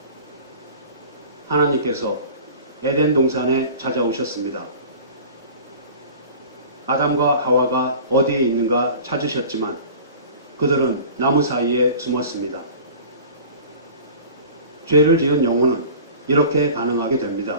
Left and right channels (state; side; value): inverted; both; correlation -0.41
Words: 하나님께서 에덴 동산에 찾아오셨습니다. 아담과 하와가 어디에 있는가 찾으셨지만 그들은 나무 사이에 숨었습니다. 죄를 지은 영혼은 이렇게 반응하게 됩니다.